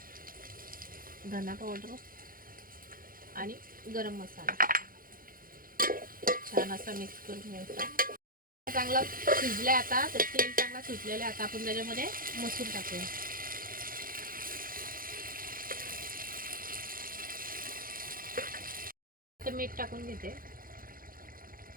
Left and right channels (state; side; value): late; left; 0.41 ms